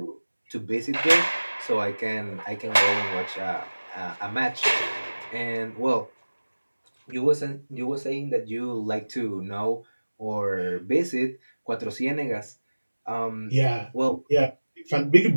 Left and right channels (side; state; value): both; inverted; correlation -1.00